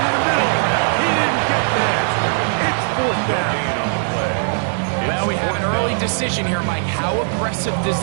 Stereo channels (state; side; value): silent; left; digital silence